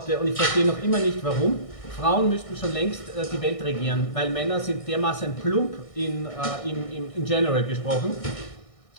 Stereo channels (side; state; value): right; late; 1.6 ms